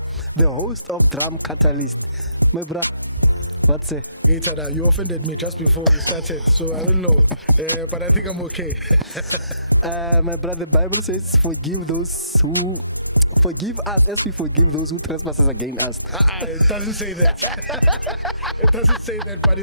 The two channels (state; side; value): inverted; both; correlation -0.77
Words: the host of Drum Catalyst. My brother, what's it? Hey Tada, you offended me just before we started, so I don't know, but I think I'm okay. My brother, the Bible says, forgive us as we forgive those who trespass against us. It doesn't say that. It doesn't say that, but